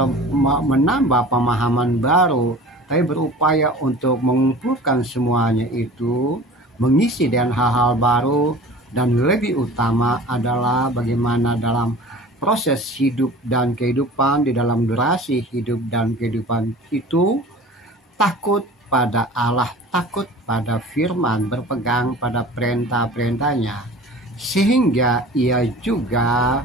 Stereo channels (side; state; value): both; normal; correlation 0.41